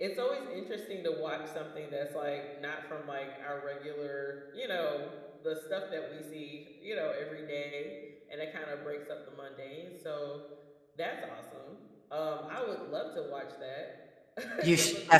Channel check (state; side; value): identical; both; correlation 1.00